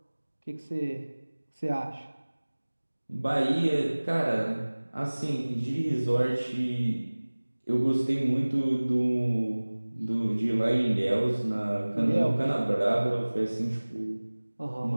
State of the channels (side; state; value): both; inverted; correlation -1.00